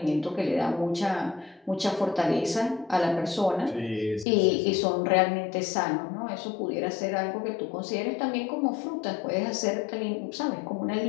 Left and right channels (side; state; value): right; drops out; at 4.2 s